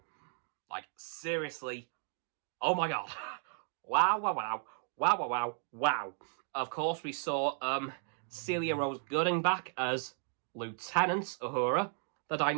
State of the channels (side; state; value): left; silent; 54 dB below the other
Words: Like, seriously. Oh my god. Wow. Of course, we saw Celia Rose Gooding back as Lieutenant Uhura. The